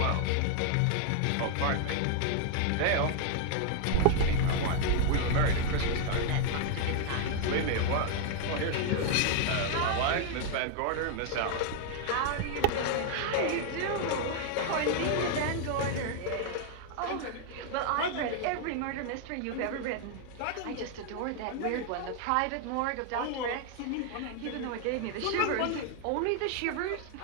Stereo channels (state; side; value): different; both; correlation 0.00